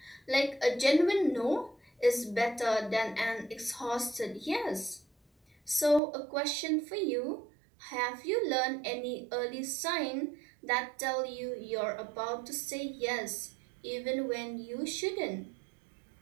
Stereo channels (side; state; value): left; drops out; at 6.0 s